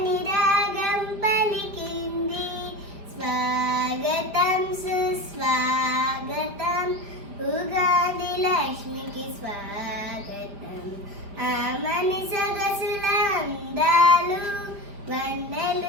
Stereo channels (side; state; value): left; late; 5.2 ms